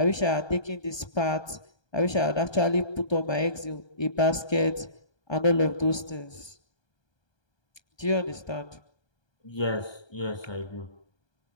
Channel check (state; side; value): late; right; 1.3 ms